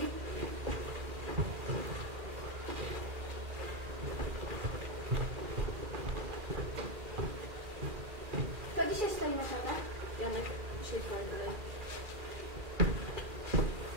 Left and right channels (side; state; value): left; late; 2.4 ms